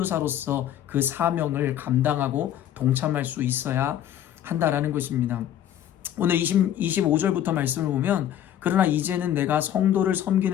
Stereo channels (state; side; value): quieter; right; 11.0 dB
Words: 그 사명을 감당하고 동참할 수 있어야 한다라는 것입니다. 오늘 25절부터 말씀을 보면, 그러나 이제는 내가 성도를